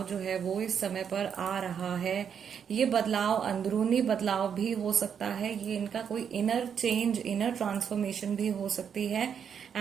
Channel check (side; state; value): left; quieter; 7.6 dB